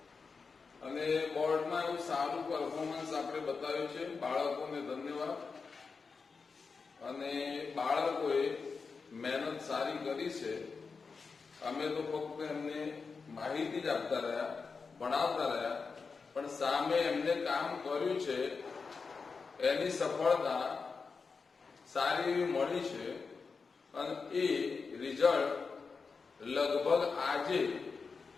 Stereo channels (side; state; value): right; quieter; 4.9 dB